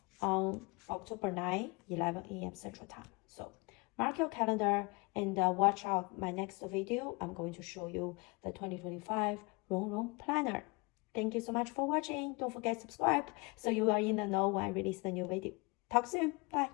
on October 9, 11 a.m. Central Time. So mark your calendar and watch out my next video. I'm going to show you the 2025 Rongrong Planner. Thank you so much for watching. Don't forget to subscribe so you are in the know when I release the new video. Talk soon.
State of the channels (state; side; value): quieter; right; 28.6 dB